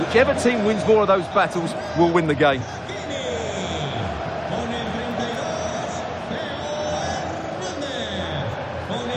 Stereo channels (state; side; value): identical; both; correlation 1.00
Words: Whichever team wins more of those battles will win the game.